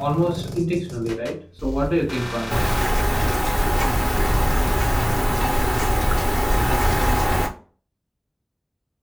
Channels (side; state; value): both; identical; correlation 1.00